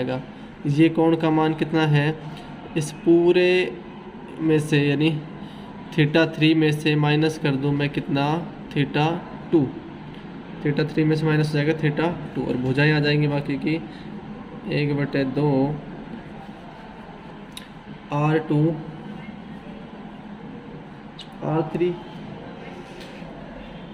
ये कोण का मान कितना है, इस पूरे में से यानी θ3 में से माइनस कर दूँ मैं कितना, θ2, θ3 में से माइनस हो जाएगा θ2 और भुजाएं आ जाएंगी बाकी की 1/2 R2 R3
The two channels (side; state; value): both; identical; correlation 1.00